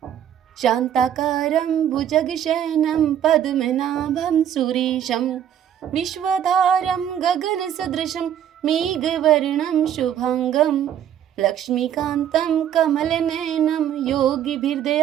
शांताकारं भुजगशयनं पद्मनाभं सुरेशं विश्वधारं गगनसदृशं मेघवर्णं शुभांगं लक्ष्मीकान्तं कमलनयनं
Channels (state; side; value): quieter; left; 10.0 dB